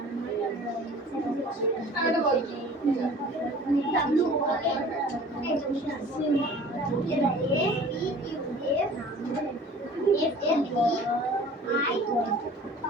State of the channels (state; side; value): normal; both; correlation 0.46